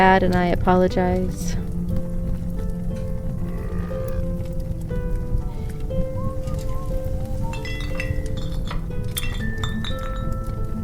and I apologize.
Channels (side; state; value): both; identical; correlation 1.00